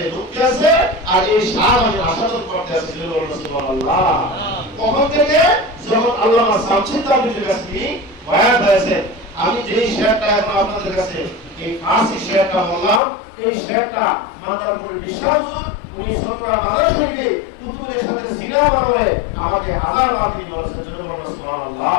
আছে আর এই স্বাদ আমি আস্বাদন করতে আছি। সুবহানাল্লাহ। কখন থেকে যখন আল্লামা শামসি তাবরিজীর কাছে বায়াত হয়েছে আমি যেই শেয়ারটা এখন আপনাদের কাছে এই ফার্সি শেয়ারটা বললাম এই শেয়ারটা মাদারপুরের বিশ্বাস উনি সতরা মাদার শরীফে কুতুবের সাথে সিনেমা বানাবে আমাকে হাজার বার দিন বলেছেন।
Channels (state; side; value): drops out; right; at 13.0 s